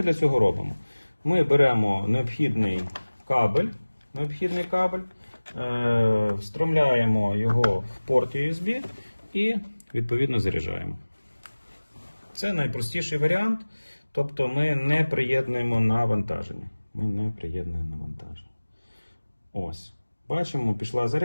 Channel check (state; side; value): inverted; both; correlation -1.00